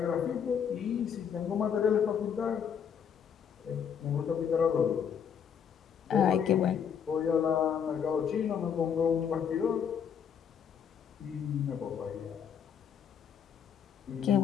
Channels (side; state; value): right; quieter; 7.7 dB